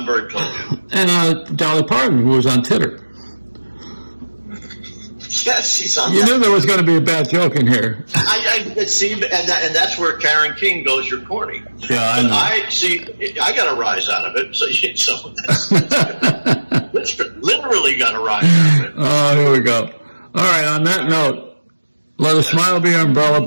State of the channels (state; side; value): inverted; both; correlation -1.00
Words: very close. And Dolly Parton, who was on Titter. Yes, she's on. You knew there was going to be a bad joke in here. I see, and that's where Karen King goes. You're corny. Yeah, I know. I got a rise out of it. So that's literally got a rise out of it. Oh, here we go. All right. On that note, let a smile be your umbrella,